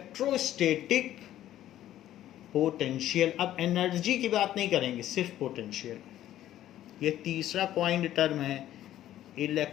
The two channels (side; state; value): right; quieter; 12.7 dB